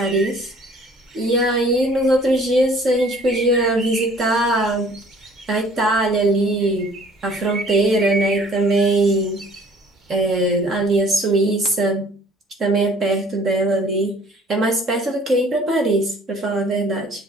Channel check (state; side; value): normal; both; correlation 0.54